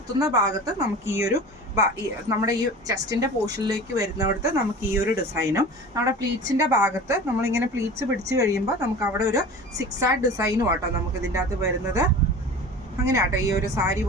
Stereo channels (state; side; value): normal; both; correlation 0.37